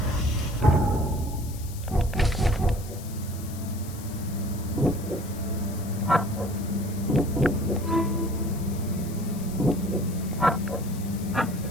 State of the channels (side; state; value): left; noise; hiss, 16 dB below the sound